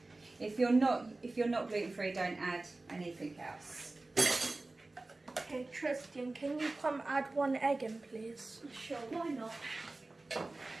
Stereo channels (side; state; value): left; quieter; 3.1 dB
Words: If you're not gluten-free, don't add anything else. Okay, Tristian, can you come add 1 egg in, please? Sure, why not?